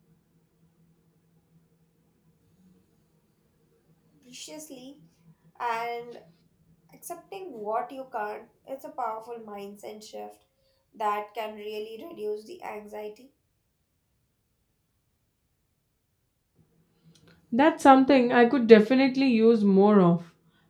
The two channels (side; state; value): both; identical; correlation 1.00